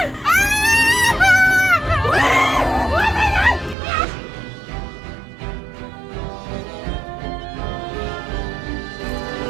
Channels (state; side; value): drops out; left; at 3.8 s